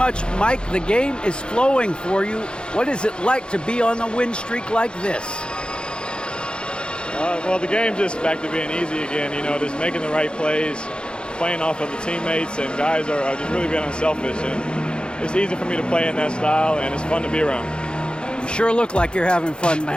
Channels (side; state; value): right; late; 0.052 ms